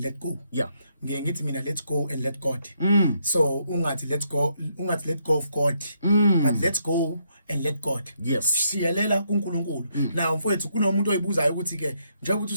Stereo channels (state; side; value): inverted; both; correlation -0.75